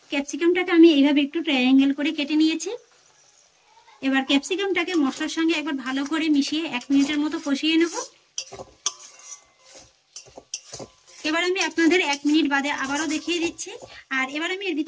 ক্যাপসিকামটাকে আমি এইভাবে একটু ট্রায়াঙ্গেল করে কেটে নিয়েছি। এবার ক্যাপসিকামটাকে মশলার সঙ্গে একবার ভালো করে মিশিয়ে 1 মিনিটের মতো কষিয়ে নেব। এবার আমি আপনাদের 1 মিনিট বাদে আবারও দেখিয়ে দিচ্ছি। আর এবার আমি এর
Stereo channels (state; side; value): identical; both; correlation 1.00